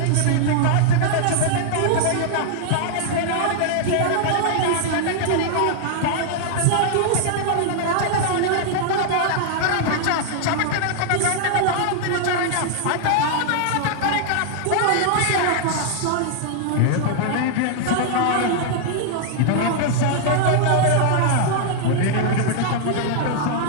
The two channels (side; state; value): both; different; correlation -0.01